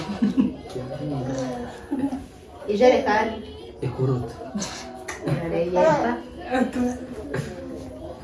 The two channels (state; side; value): identical; both; correlation 1.00